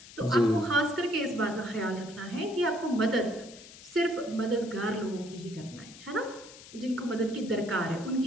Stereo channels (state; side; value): noise; left; hiss, 18 dB below the sound